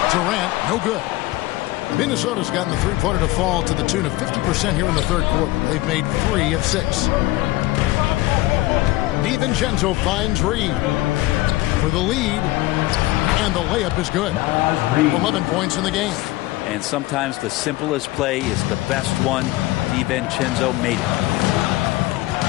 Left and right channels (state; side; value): quieter; right; 18.5 dB